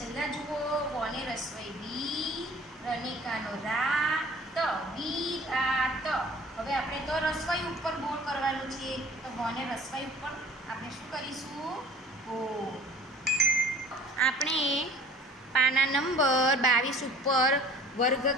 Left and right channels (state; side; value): normal; both; correlation 0.48